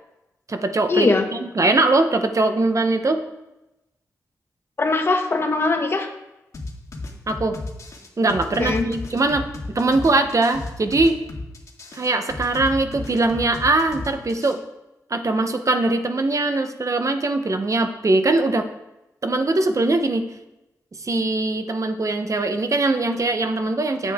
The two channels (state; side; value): normal; both; correlation 0.65